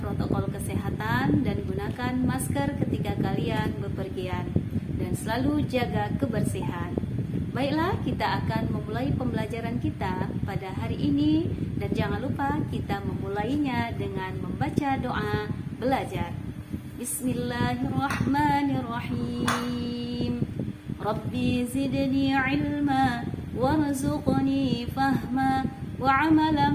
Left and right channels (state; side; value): identical; both; correlation 1.00